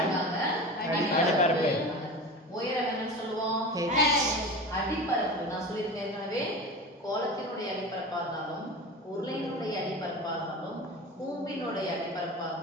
அடிப்பரப்பு. உயரம் என்னன்னு சொல்லுவோம்? அடிப்பரப்பு. நான் சொல்லியிருக்கேன் ஏற்கனவே, கோலத்தினுடைய அடிப்பரப்பா இருந்தாலும், உருளையினுடைய அடிப்பரப்பா இருந்தாலும், கூம்பினுடைய அடிப்பரப்பா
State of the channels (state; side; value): normal; both; correlation 0.31